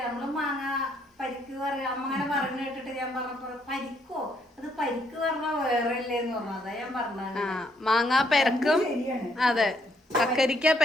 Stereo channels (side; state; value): both; normal; correlation 0.72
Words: നമ്മള് മാങ്ങ പരിക്ക് പറയാ അമ്മങ്ങനെ പറഞ്ഞു കേട്ടിട്ട് ഞാൻ പറഞ്ഞപ്പോ പരിക്കോ അത് പരിക്ക് പറഞ്ഞാ വേറെ ഇല്ലേന്ന് പറഞ്ഞു. അതാ ഞാൻ പറഞ്ഞത്. മാങ്ങ പെരക്കും അതെ കക്കരിക്ക